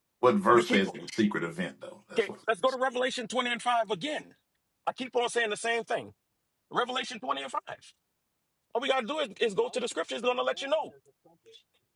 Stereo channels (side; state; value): both; identical; correlation 1.00